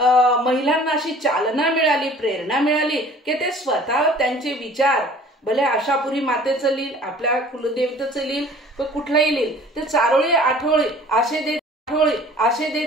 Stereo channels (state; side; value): normal; both; correlation 0.49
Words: महिलांना अशी चालना मिळाली, प्रेरणा मिळाली की ते स्वतः त्यांचे विचार भले आशापुरी मातेचं लिहिल, आपल्या कुलदेवतेचं लिहिल, कुठलाही लिहिल, ते चारोळी आठोळी आशे दे